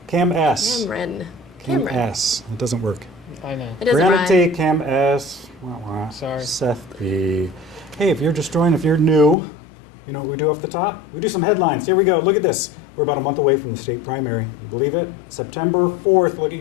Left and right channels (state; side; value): drops out; right; at 9.3 s